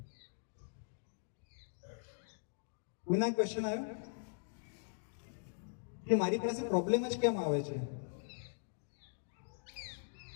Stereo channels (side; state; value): right; silent; digital silence